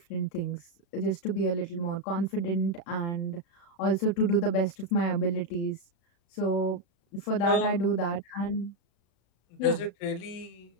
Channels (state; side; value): late; right; 35 ms